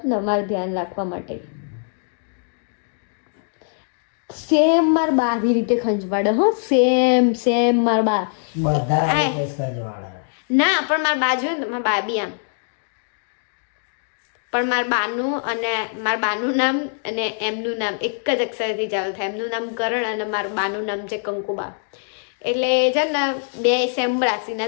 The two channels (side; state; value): right; silent; digital silence